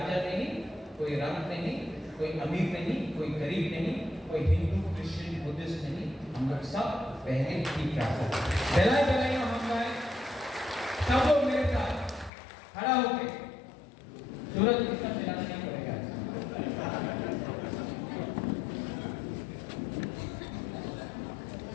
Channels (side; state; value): right; drops out; at 12.3 s